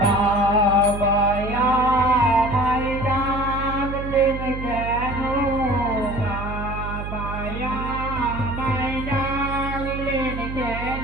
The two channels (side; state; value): right; noise; hum, 7 dB below the sound